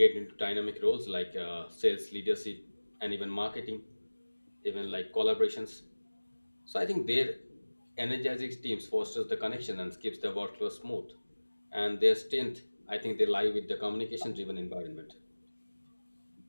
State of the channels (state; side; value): inverted; both; correlation -1.00